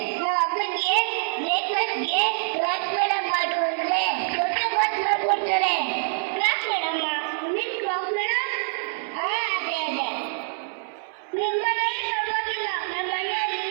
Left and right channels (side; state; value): left; silent; 60 dB below the other